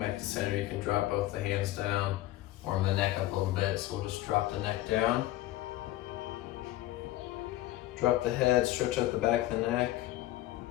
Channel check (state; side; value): quieter; right; 15.7 dB